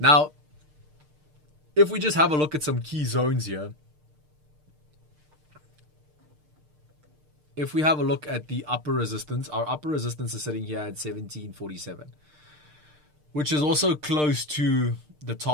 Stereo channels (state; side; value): late; left; 6.6 ms